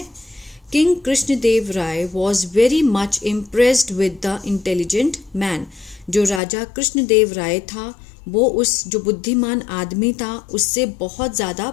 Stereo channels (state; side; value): drops out; right; at 6.4 s